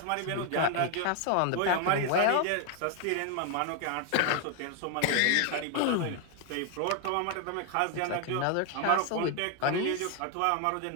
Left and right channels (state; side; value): different; both; correlation 0.01